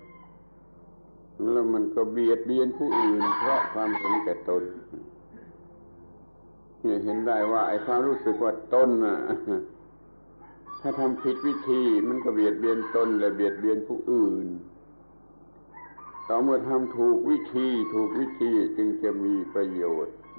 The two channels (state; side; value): inverted; both; correlation -1.00